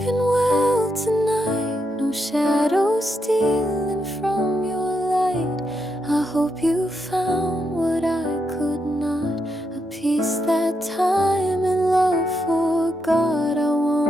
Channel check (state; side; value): normal; both; correlation 0.81